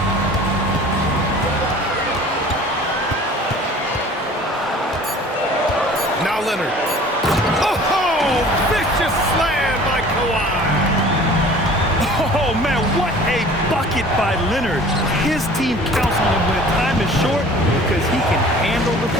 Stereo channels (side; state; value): both; normal; correlation 0.47